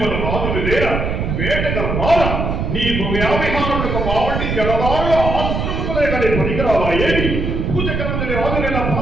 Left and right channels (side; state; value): right; noise; rumble, 2 dB below the sound